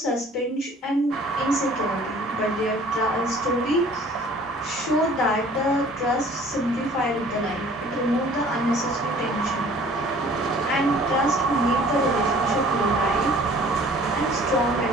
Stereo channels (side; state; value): both; normal; correlation 0.51